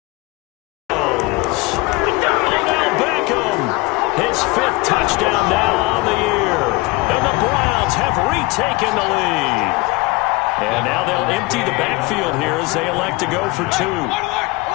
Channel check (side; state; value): right; quieter; 23.6 dB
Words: Odell Beckham, his 5th touchdown now on the year. And the Browns have retaken the lead. And now they'll empty the backfield here as they elect to go for 2.